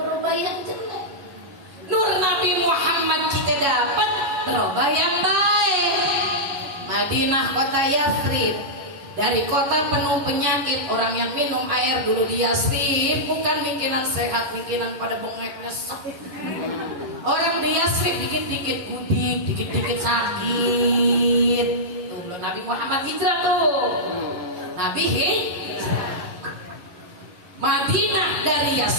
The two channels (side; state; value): left; late; 11 ms